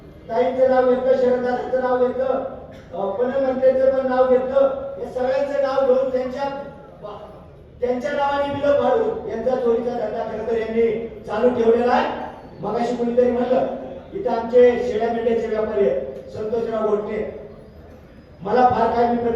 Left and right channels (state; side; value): identical; both; correlation 1.00